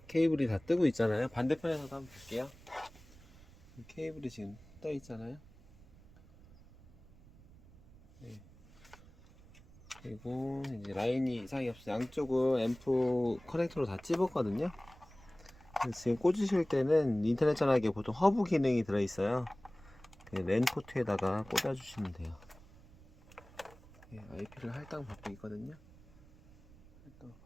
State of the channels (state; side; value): noise; right; rumble, 23 dB below the sound